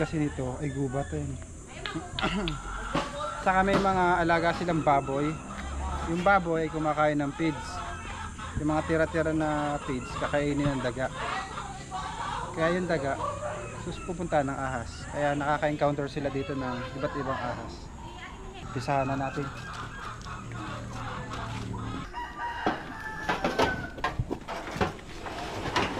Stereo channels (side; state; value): both; identical; correlation 1.00